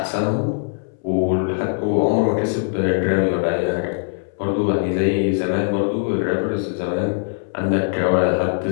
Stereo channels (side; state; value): right; silent; 65 dB below the other